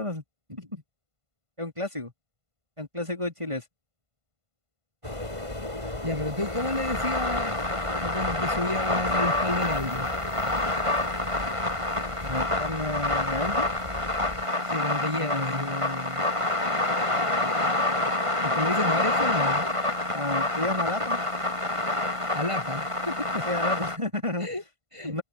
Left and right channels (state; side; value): late; left; 1.5 ms